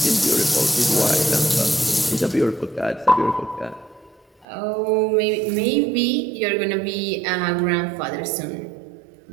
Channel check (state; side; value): drops out; left; at 4.5 s